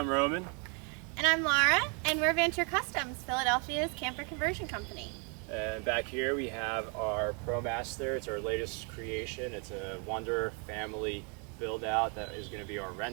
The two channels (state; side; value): quieter; left; 36.6 dB